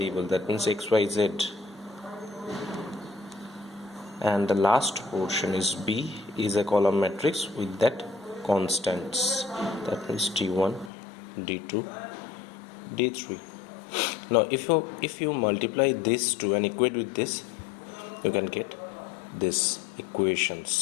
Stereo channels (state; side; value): drops out; right; at 10.9 s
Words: that means x, y, z, and the last portion is B is a column matrix with that constants, that means d1, d2, d3. Now if you multiply this two and equate with this, you can get this